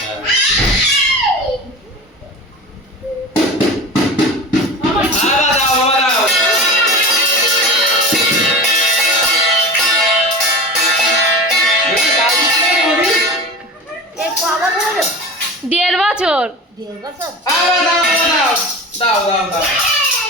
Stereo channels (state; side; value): normal; both; correlation 0.32